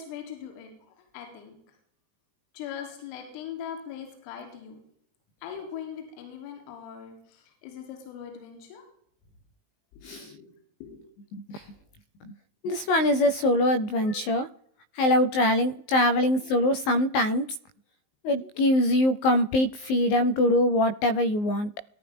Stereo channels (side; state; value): right; late; 19 ms